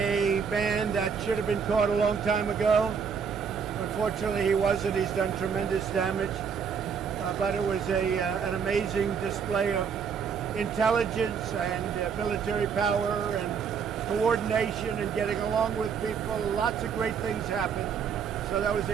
man that should have been caught a long time ago. Unfortunately, he wasn't. He's done tremendous damage. But it was an amazing display of intelligence and military power and coordination and getting along with people. Lots of great things happened. So that was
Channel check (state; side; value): quieter; left; 6.6 dB